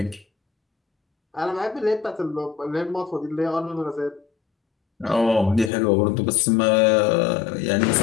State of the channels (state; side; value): drops out; right; at 5.7 s